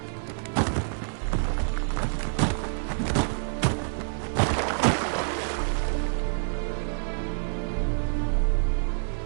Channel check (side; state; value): left; silent; digital silence